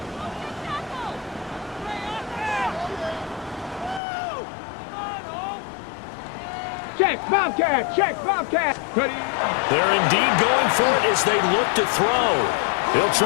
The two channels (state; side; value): drops out; right; at 4.0 s